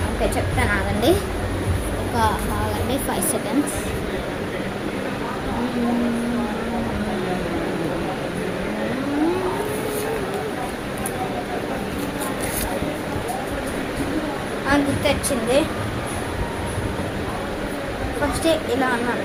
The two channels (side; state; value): both; identical; correlation 1.00